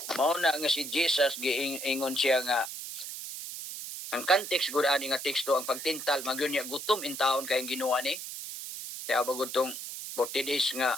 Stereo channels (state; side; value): noise; right; hiss, 8 dB below the sound